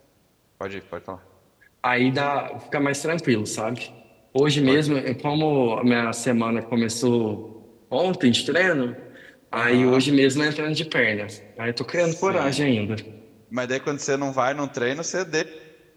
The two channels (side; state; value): both; identical; correlation 1.00